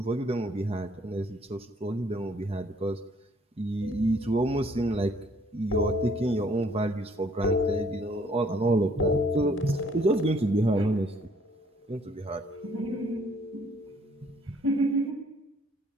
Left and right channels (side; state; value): both; normal; correlation 0.62